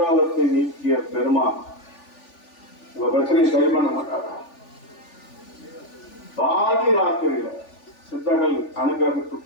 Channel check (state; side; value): late; right; 3.4 ms